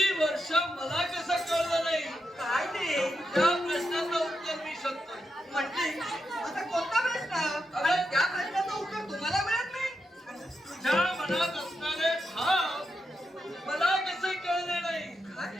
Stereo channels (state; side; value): normal; both; correlation 0.85